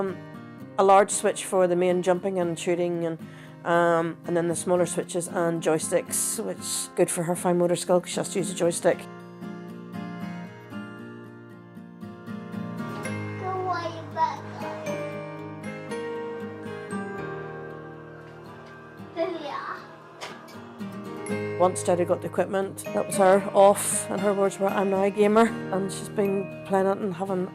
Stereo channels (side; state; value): both; identical; correlation 1.00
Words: large switch for the main jumping and shooting, and then the smaller switches and joysticks, which is good for her fine motor skill because she has to use a joystick. Once Jada got the equipment, that was her off, and her words were, "I'm now a gamer," and she's been playing it and having